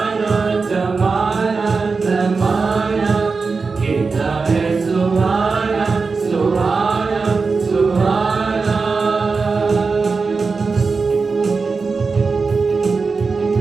ज़माना ज़माना कितना है सुहाना सुहाना सुहाना।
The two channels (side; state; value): left; quieter; 4.5 dB